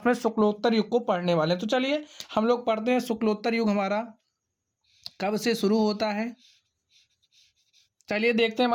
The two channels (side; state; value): both; identical; correlation 1.00